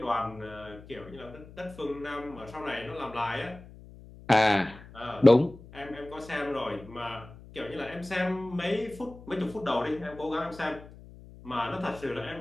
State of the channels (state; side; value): noise; left; hum, 18 dB below the sound